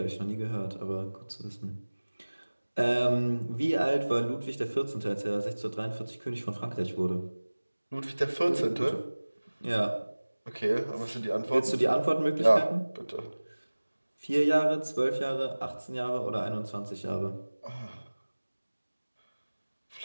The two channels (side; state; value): both; inverted; correlation -1.00